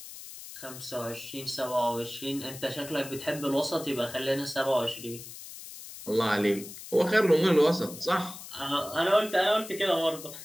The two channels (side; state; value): left; noise; hiss, 13 dB below the sound